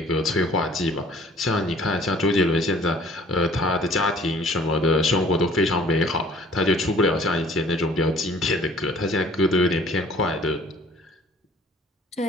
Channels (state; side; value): normal; both; correlation 0.53